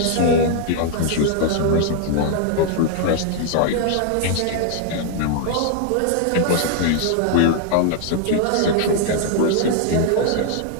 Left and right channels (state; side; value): different; both; correlation 0.00